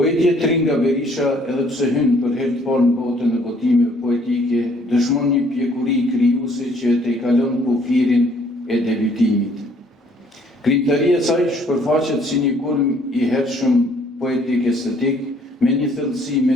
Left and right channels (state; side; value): normal; both; correlation 0.62